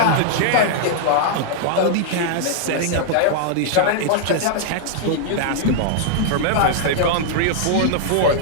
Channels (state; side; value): different; both; correlation -0.01